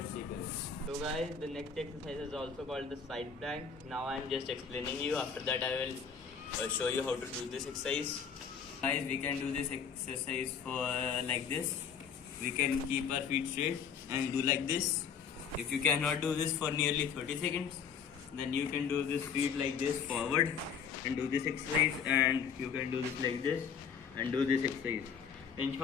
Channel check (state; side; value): quieter; right; 6.8 dB